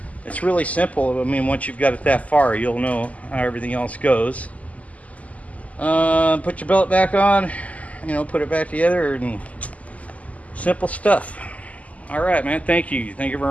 it's really simple. I mean, once you've got it that far, you'll know how everything else goes. Put your belt back on, put it back together, and simple stuff. All right, man. Thank you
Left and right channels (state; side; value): late; right; 0.070 ms